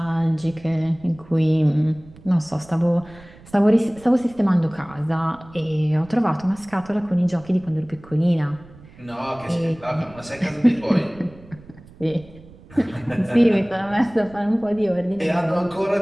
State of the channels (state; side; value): noise; right; rumble, 22 dB below the sound